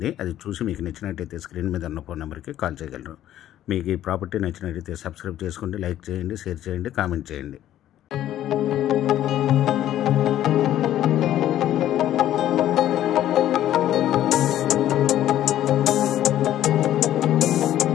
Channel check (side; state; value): right; quieter; 12.4 dB